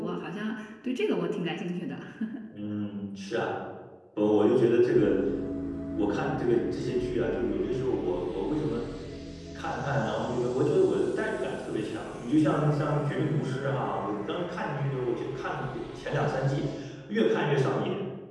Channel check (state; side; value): identical; both; correlation 1.00